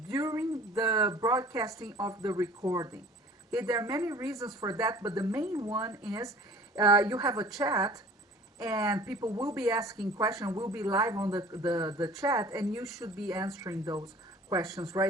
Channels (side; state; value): both; normal; correlation 0.47